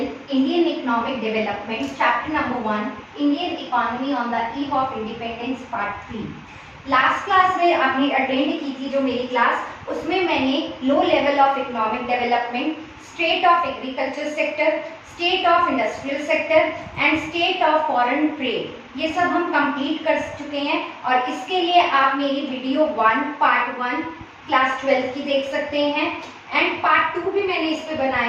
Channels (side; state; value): both; identical; correlation 1.00